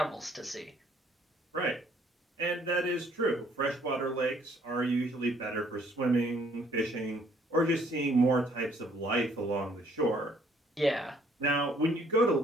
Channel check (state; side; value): normal; both; correlation 0.63